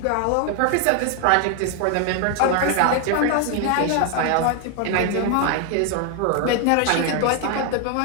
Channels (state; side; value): different; both; correlation 0.01